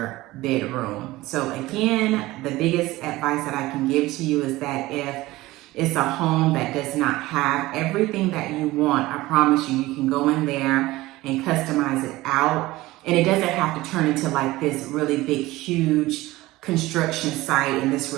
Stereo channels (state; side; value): quieter; left; 18.5 dB